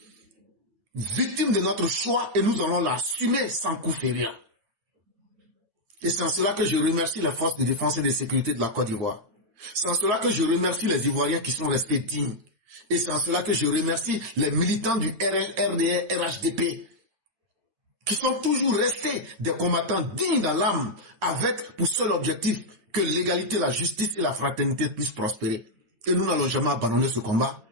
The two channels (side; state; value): left; late; 9.1 ms